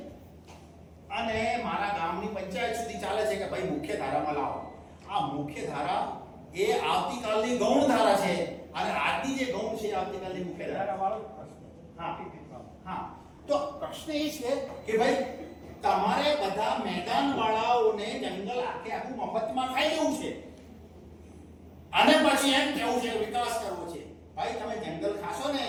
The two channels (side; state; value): both; identical; correlation 1.00